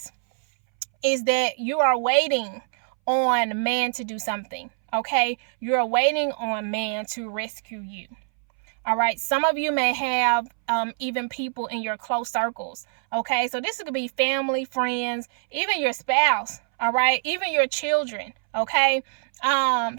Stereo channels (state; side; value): silent; left; 62 dB below the other